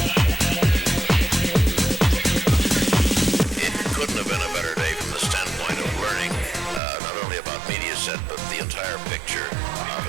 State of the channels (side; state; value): left; drops out; at 6.8 s